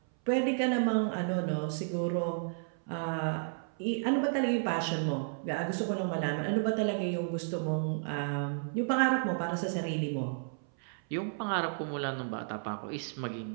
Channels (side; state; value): left; silent; 56 dB below the other